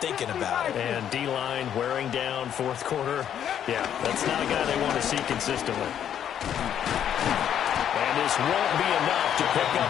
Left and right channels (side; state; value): right; quieter; 9.6 dB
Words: thinking about it. And D-line wearing down 4th quarter. Yeah, that's not a guy they want to see consistently. And this won't be enough to pick